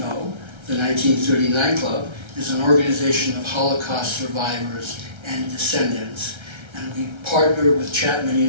the 1939 Club is an organization of Holocaust survivors and descendants, and we partner with Chapman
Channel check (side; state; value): left; late; 1.3 ms